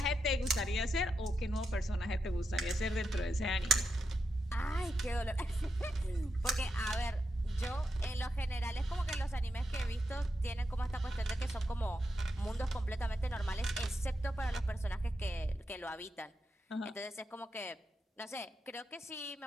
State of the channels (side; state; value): both; normal; correlation 0.85